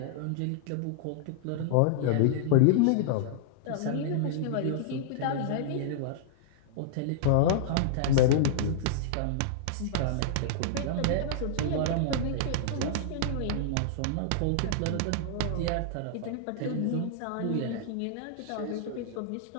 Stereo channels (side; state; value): both; different; correlation -0.01